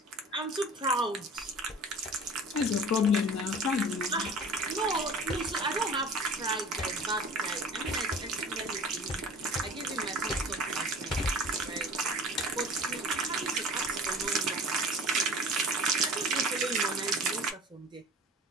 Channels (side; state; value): both; normal; correlation 0.42